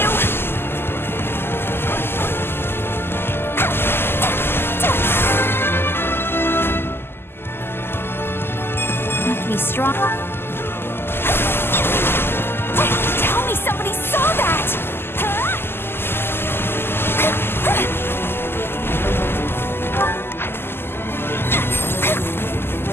Make me strong. Tell me somebody saw that!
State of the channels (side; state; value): right; late; 0.11 ms